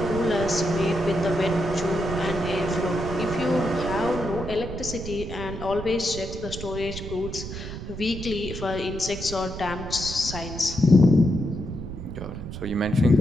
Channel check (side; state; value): right; noise; rumble, 9 dB below the sound